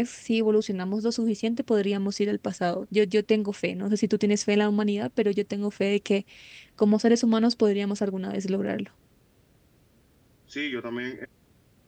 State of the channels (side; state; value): both; identical; correlation 1.00